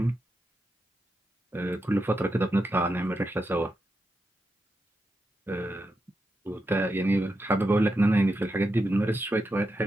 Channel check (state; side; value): normal; both; correlation 0.86